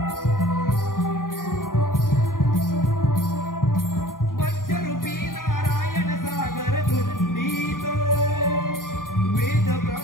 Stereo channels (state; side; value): late; right; 0.90 ms